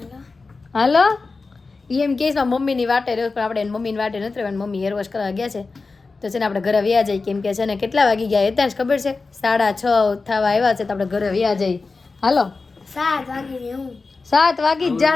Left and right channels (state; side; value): quieter; right; 4.0 dB